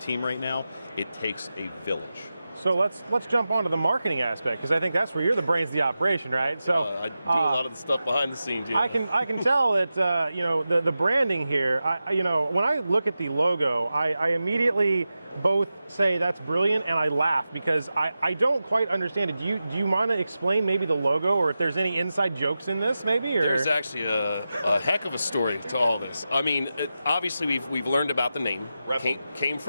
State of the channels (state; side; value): inverted; both; correlation -0.92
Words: right now, it takes a village. So let's jump onto the marketing aspect, because I think that's where you're the brains of the operation, right? So I do a lot of the stuff behind the scenes. I can tell that the branding here. When I look at the logo, I immediately both say that's brilliant and I laugh because I don't quite understand it. Do you want to explain maybe the logo, or if there's any inside jokes in this, maybe? Or? There's actually a heck of a story to all this. I mean, obviously we've learned about the name. Came